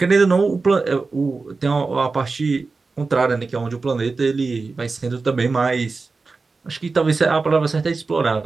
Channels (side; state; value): left; quieter; 4.1 dB